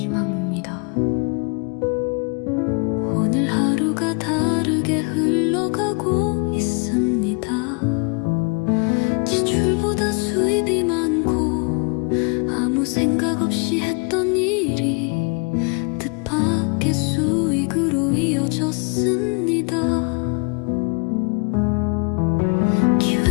오늘 하루가 다르게 흘러가고 있습니다. 지출보다 수입이 많고 아무 생각 없이 했던 일이 뜻밖의 수익으로 이어졌습니다.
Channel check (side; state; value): right; quieter; 34.4 dB